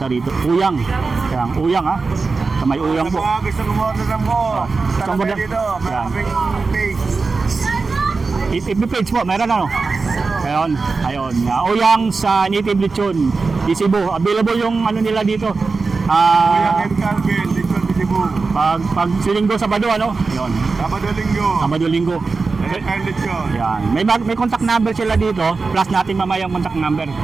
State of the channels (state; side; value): quieter; left; 4.2 dB